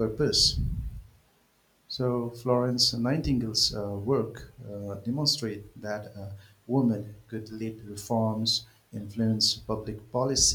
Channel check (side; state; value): both; identical; correlation 1.00